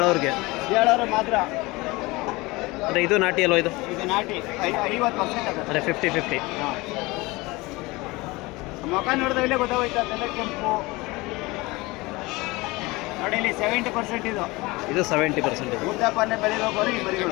ಮಾತ್ರ. ಅಂದರೆ ಇದು ನಾಟಿ ಅಲ್ವ? ಇದು ನಾಟಿ 50% ಅಂದರೆ 50-50. ಹಾಂ ಮುಖ ನೋಡಿದ್ರೆ ಇಲ್ಲೇ ಗೊತ್ತಾಗೋಯ್ತು ಅದೆಲ್ಲ ಕೆಂಪು ನೋಡಿ ಇಲ್ಲಿ 70% ಇದು ಇದು 70% ಇದೆ. ಉದ್ದಪ್ಪನೆ ಬೆಳಿಬೇಕು ಈ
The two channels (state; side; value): quieter; right; 22.6 dB